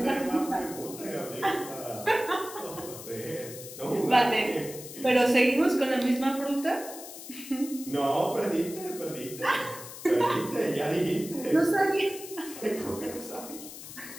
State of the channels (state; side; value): noise; left; hiss, 13 dB below the sound